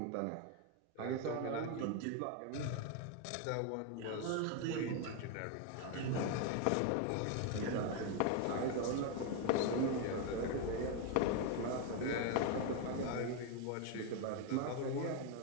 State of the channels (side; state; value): both; different; correlation 0.01